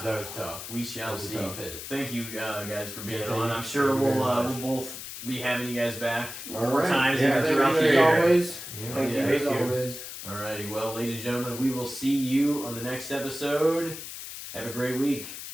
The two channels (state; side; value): noise; left; hiss, 10 dB below the sound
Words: that was tough. we That shall was a see. tough hit. Thank you guys for being Yeah, on. thank I'm you. sure Thank you we'll very much. both be having you guys back All more right. times Yeah, even throughout the As year. always. Yeah. Thank you Yeah, as thank you. always. Alrighty, well, ladies and gentlemen, we will see you on the next episode. Have a great week.